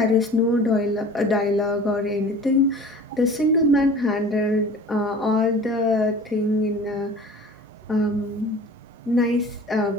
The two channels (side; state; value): both; normal; correlation 0.42